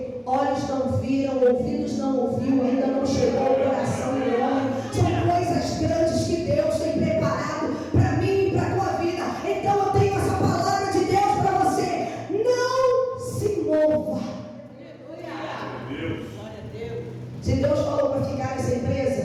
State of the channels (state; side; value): identical; both; correlation 1.00